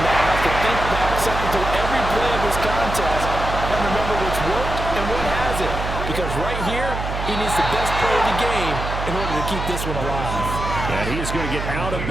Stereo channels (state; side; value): noise; right; hum, 5 dB below the sound